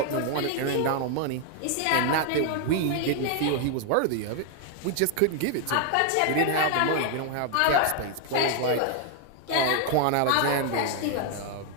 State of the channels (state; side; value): different; both; correlation 0.00